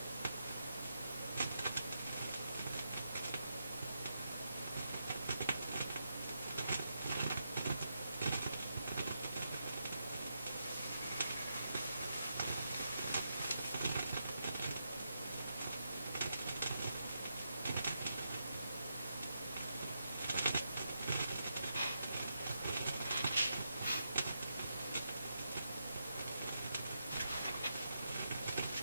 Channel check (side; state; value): both; inverted; correlation -0.84